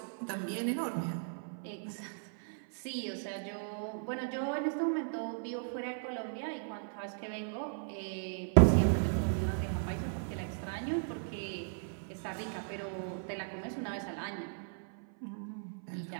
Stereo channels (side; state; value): left; silent; 53 dB below the other